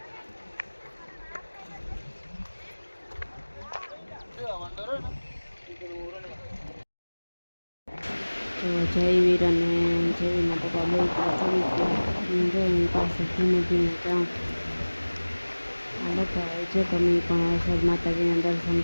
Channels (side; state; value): both; inverted; correlation -1.00